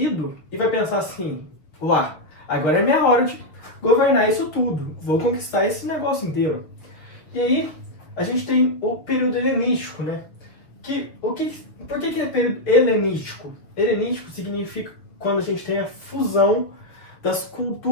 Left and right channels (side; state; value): right; late; 6.2 ms